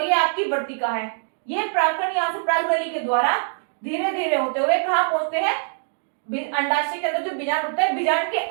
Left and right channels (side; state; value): left; silent; digital silence